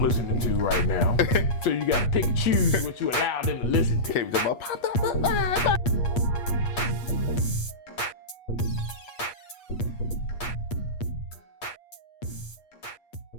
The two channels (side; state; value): right; late; 8.5 ms